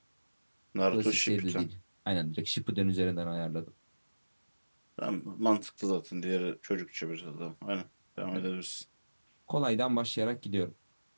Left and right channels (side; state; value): both; inverted; correlation -1.00